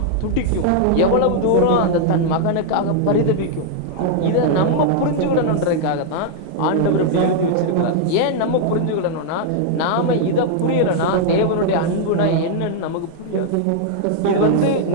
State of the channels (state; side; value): different; both; correlation -0.01